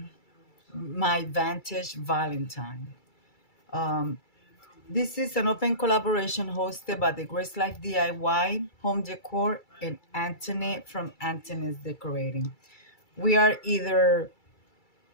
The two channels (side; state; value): right; late; 2.3 ms